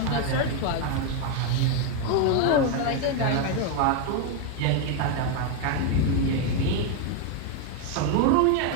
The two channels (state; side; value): different; both; correlation 0.01